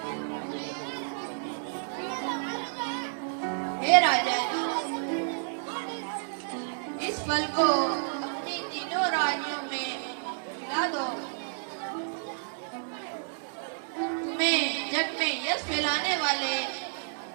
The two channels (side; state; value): left; silent; digital silence